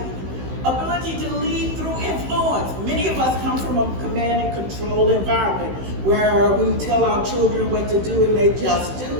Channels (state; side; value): late; left; 16 ms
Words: Ability to lead through influence. Many of us come from a command and control environment where we tell our children what to do and they just do